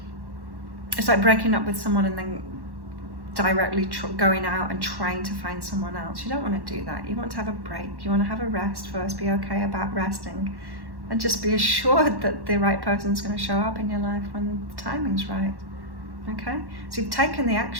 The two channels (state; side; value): late; left; 1.1 ms